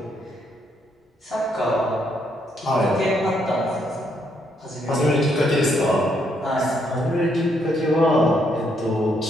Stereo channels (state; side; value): normal; both; correlation 0.74